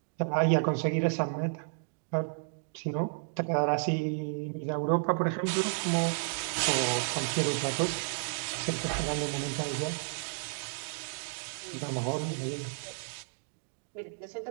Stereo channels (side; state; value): left; silent; digital silence